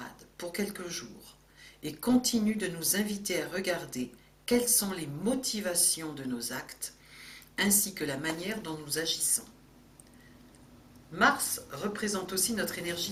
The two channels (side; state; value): both; identical; correlation 1.00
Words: pour quelques jours et continue de nous inviter à regarder quelles sont les motivations de nos actes ainsi que la manière dont nous agissons. Mars représente aussi notre